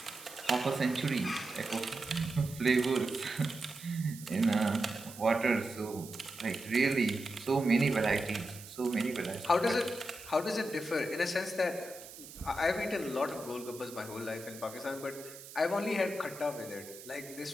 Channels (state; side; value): noise; right; hiss, 15 dB below the sound